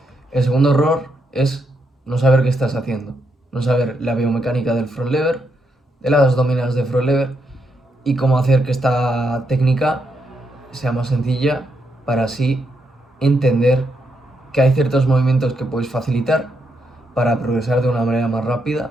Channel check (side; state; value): both; normal; correlation 0.80